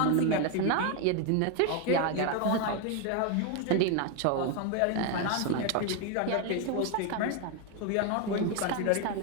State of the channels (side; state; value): both; different; correlation 0.01